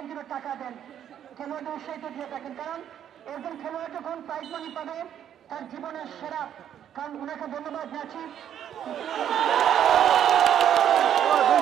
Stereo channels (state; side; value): quieter; left; 9.9 dB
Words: যেন টাকা দেন, খেলোয়াড়দের উৎসাহিত দিয়ে থাকেন। কারণ একজন খেলোয়াড় যখন প্রাইজ মানি পাবে তার জীবনের সেরা, কারণ ওনাকে ধন্যবাদ জানাচ্ছি।